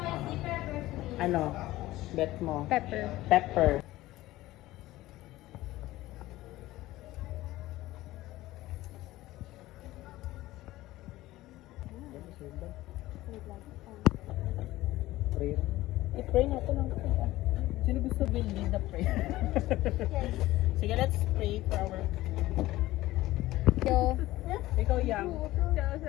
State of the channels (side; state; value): right; quieter; 16.9 dB